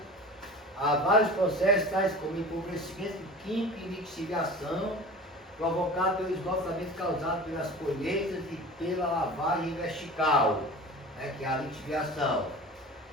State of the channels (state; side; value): normal; both; correlation 0.37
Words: a vários processos, tais como empobrecimento químico e lixiviação, provocado pelo esgotamento causado pelas colheitas e pela lavagem vertical, que é a lixiviação.